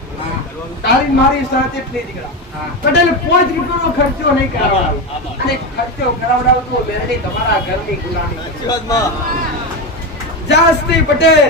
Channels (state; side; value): normal; both; correlation 0.15